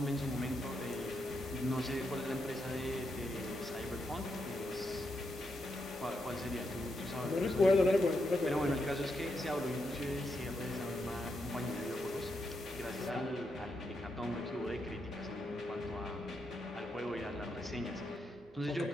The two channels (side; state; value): both; normal; correlation 0.82